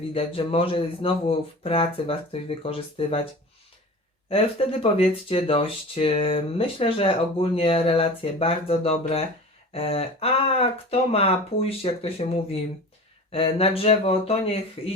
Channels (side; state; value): both; normal; correlation 0.36